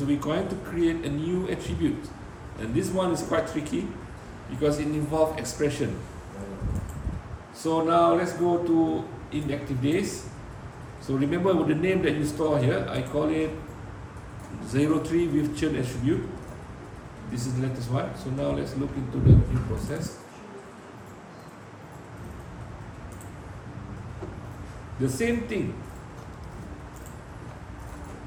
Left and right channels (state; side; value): identical; both; correlation 1.00